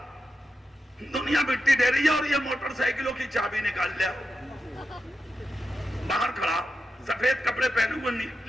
دنیا مٹی دے رہی ہے اور یہ موٹر سائیکلوں کی چابی نکال لیا. باہر کھڑا، سفید کپڑے پہنے ہوئے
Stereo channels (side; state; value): both; normal; correlation 0.89